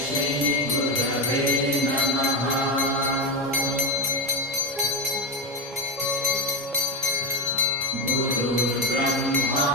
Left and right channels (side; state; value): both; normal; correlation 0.13